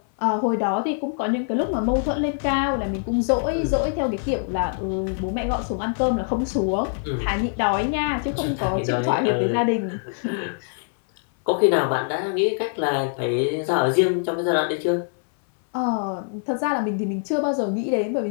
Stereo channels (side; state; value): right; silent; 63 dB below the other